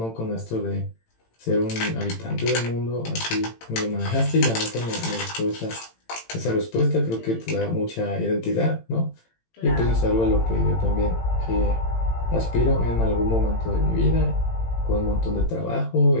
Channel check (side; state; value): right; late; 18 ms